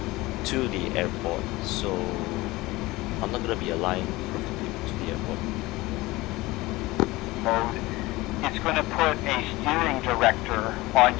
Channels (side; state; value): right; quieter; 20.2 dB